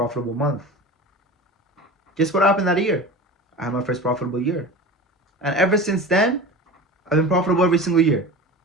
month. Guess what happened that year? I had my first profitable year. And ever since then, I've been profitable every single year.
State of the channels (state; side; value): normal; both; correlation 0.32